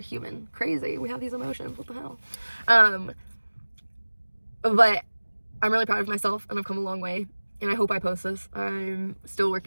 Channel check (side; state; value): both; inverted; correlation -1.00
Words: human. Crazy. We have these emotions. What the hell? But I'm really proud of myself, and I've come a long way. And I hope I post this. I'm still